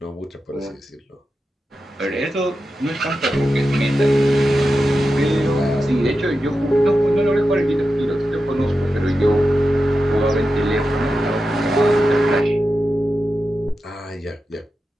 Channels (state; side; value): normal; both; correlation 0.91